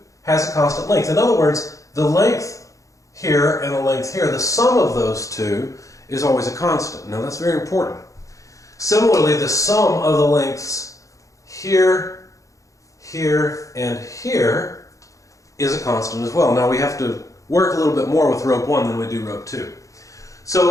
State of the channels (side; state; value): right; late; 0.16 ms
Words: has a constant length. In other words, the length here and the length here, the sum of those two is always a constant. Now that's very important. Similarly, the sum of the lengths here, here, and here is a constant as well. Now we have to work a little bit more with rope 1 than we do rope 2.